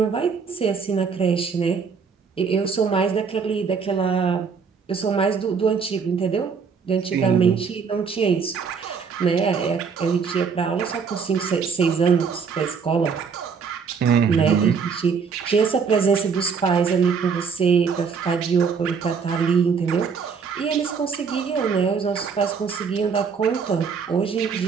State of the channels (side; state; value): left; quieter; 5.8 dB